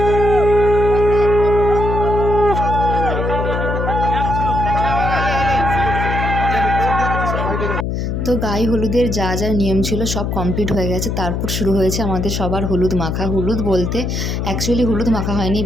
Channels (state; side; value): noise; left; hum, 1 dB below the sound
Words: তো গায়ে হলুদের যা যা নিয়ম ছিল সব কমপ্লিট হয়ে গেছে। তারপর শুরু হয়েছে আমাদের সবার হলুদ মাখা। হলুদ বলতে অ্যাকচুয়ালি হলুদ মাখা হয়নি,